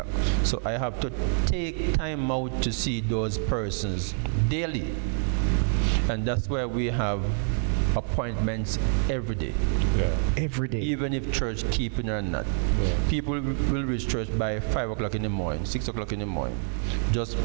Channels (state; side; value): silent; left; 60 dB below the other